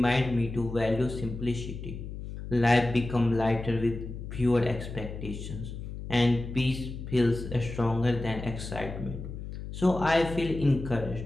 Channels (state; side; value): noise; left; hum, 9 dB below the sound